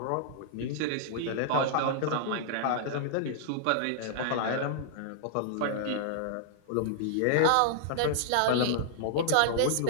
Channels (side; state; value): both; different; correlation -0.01